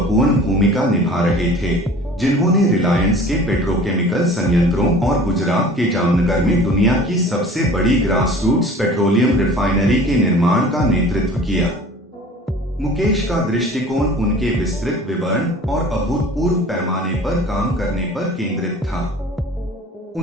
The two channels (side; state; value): both; normal; correlation 0.45